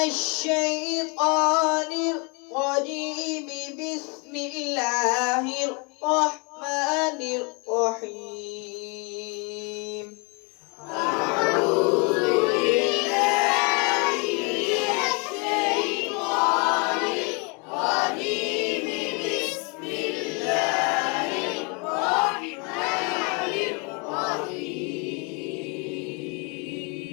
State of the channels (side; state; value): right; quieter; 32.7 dB